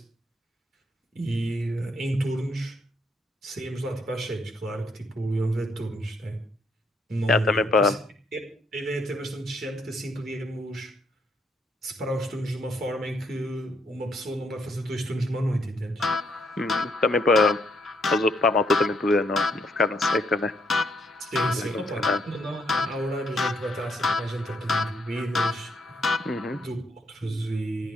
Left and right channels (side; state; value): both; normal; correlation 0.73